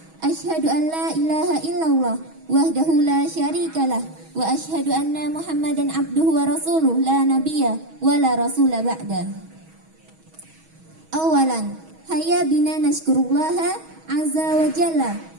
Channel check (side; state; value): left; late; 6.2 ms